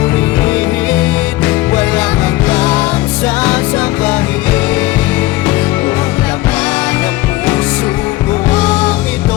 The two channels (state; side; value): quieter; right; 17.8 dB